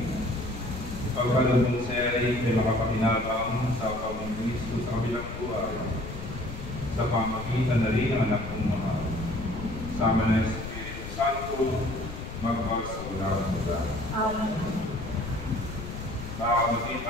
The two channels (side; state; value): left; noise; rumble, 9 dB below the sound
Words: Pagkalod ng seri ay makapakinabang sa pamang Kristo sa kabilang buhay, sa pamagitan na rin ang anak kong mahal. Sama na Espiritu Santo, magpag sa walang hanggan. Amen. Mga kapatid,